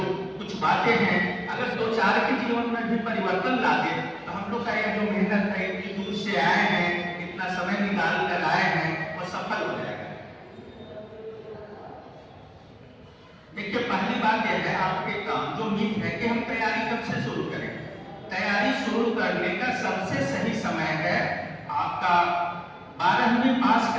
कुछ बातें हैं, अगर 2-4 के जीवन में भी परिवर्तन ला दे तो हम लोग का यह जो मेहनत है, इतनी दूर से आए हैं, इतना समय निकाल कर आए हैं, वो सफल हो जाएगा। देखिए, पहली बात यह है आपके काम जो मिथ है कि हम तैयारी कब से शुरू करें। तैयारी शुरू करने का सबसे सही समय है आपका 12वीं पास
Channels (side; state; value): both; identical; correlation 1.00